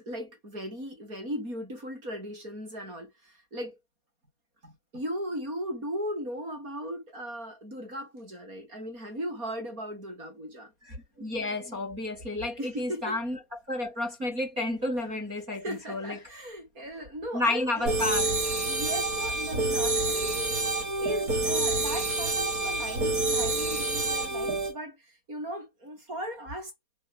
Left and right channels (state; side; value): late; left; 4.2 ms